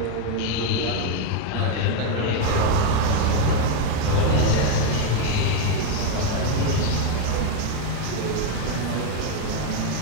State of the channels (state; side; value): different; both; correlation 0.02